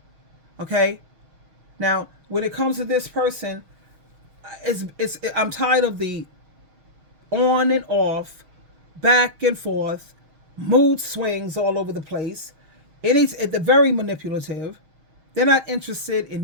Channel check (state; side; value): late; left; 6.3 ms